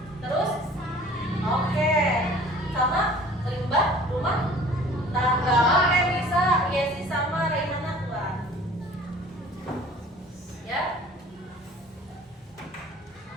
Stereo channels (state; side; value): normal; both; correlation 0.48